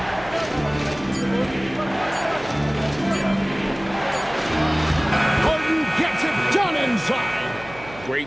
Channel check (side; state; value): right; noise; hum, 18 dB below the sound